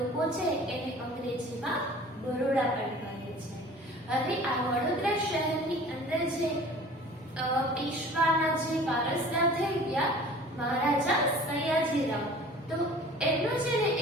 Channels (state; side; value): normal; both; correlation 0.45